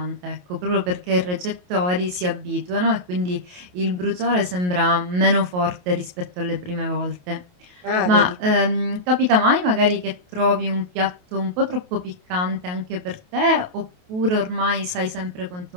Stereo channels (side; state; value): left; late; 28 ms